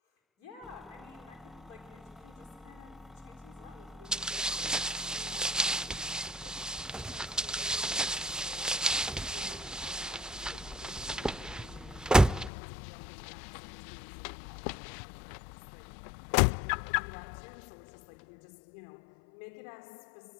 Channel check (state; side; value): drops out; right; at 12.5 s